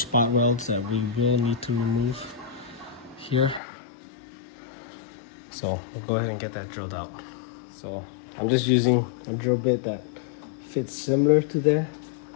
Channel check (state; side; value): drops out; right; at 3.6 s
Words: welds that we will need to remove here. So we'll go ahead and get that drilled out. So I'm just using a drill bit that fits similar to there.